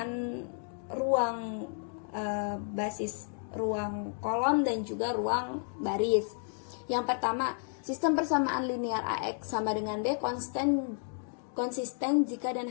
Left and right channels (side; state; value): right; silent; 56 dB below the other